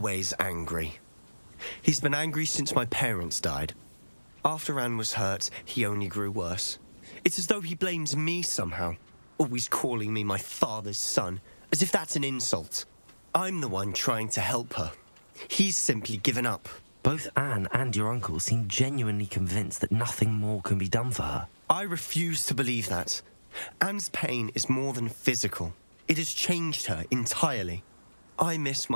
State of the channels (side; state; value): both; inverted; correlation -1.00